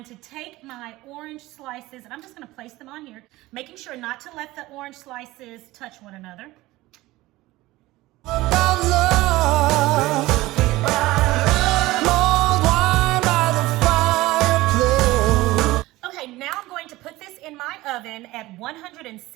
to take my orange slices and I'm just gonna place them on here, making sure not to let the orange slices touch one another. Okay, now I'm going to put this in my oven at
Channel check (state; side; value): quieter; left; 18.6 dB